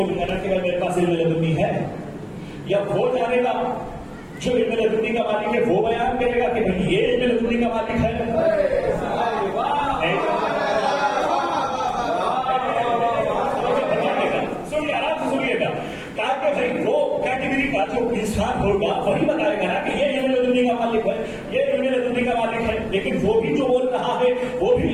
گا نا کہ میرے پاس علم لدنی ہے، یا وہ جانے گا جو علم لدنی کا مالک ہے وہ بیان کرے گا کہ بھائی یہ علم لدنی کا مالک ہے۔ سنیے آرام سے سنیے گا، تاکہ بھائی وہ کیٹیگری کا جو انسان ہوگا وہی بتائے گا نا کہ یہ علم لدنی کا مالک ہے، یہ علم لدنی کا مالک ہے، لیکن وہ بھی جو بول رہا ہے وہ بھی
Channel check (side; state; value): both; identical; correlation 1.00